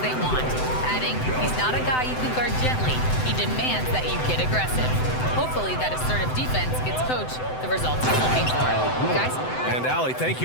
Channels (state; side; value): late; right; 7.9 ms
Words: they want," adding, "He's not a guy you can guard gently. He demands that you get aggressive." Hopefully that assertive defense gets coach the results he's looking for. Guys? And Allie, thank